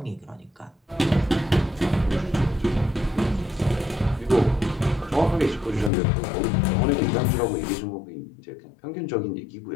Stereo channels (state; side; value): drops out; right; at 5.9 s